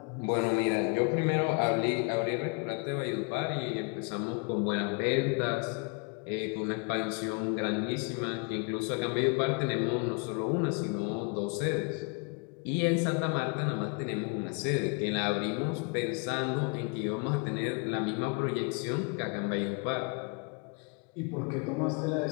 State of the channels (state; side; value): quieter; right; 33.9 dB